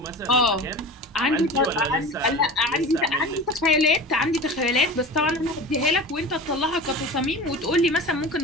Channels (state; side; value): normal; both; correlation 0.33